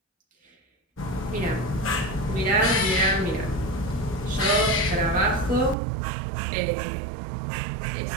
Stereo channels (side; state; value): left; drops out; at 5.8 s